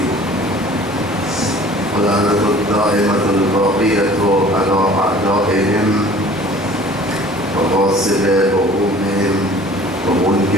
ولعنة الدائمة الباقية على أعدائهم وغاصب حقوقهم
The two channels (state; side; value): normal; both; correlation 0.48